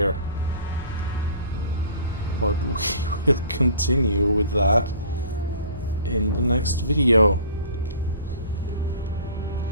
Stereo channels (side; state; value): both; inverted; correlation -0.45